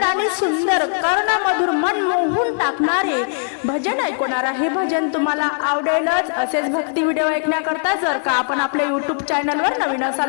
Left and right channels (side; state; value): right; silent; digital silence